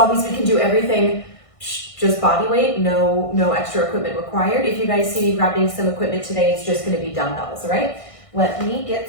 we can do everything just body weight, no extra equipment required. If you guys see me grabbing some equipment today, it's just gonna be dumbbells, all right? Let me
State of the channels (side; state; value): right; late; 1.6 ms